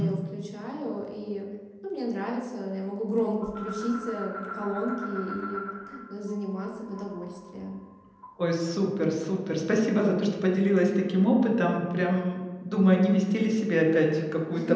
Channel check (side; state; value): both; identical; correlation 1.00